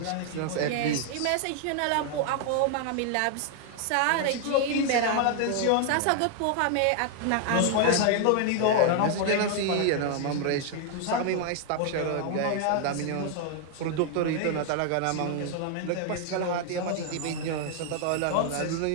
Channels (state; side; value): different; both; correlation 0.00